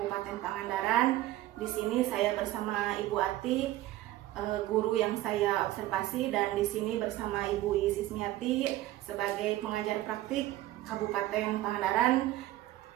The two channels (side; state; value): left; quieter; 15.4 dB